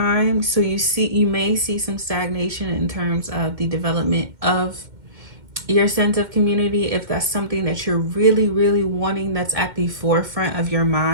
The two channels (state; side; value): late; left; 2.1 ms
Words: So you may see some stagnation in terms of the development of your sense of community, if that's something that you're really, really wanting, that's at the forefront of your